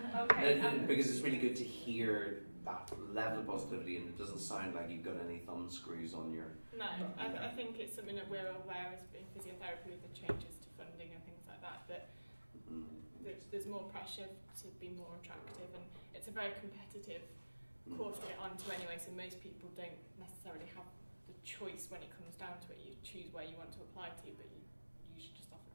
Okay. Because it's really good to hear that level of positivity, and it doesn't sound like you've got any thumb screws on your... No, I think it's something that we're aware as in physiotherapy with the changes to funding and things like that, but there's more pressure to be more attractive, and it's a very competitive course to get onto anyway, so most people don't necessarily have the choice when it comes down to it. You choose where you want to apply to, but you usually just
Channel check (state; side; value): inverted; both; correlation -1.00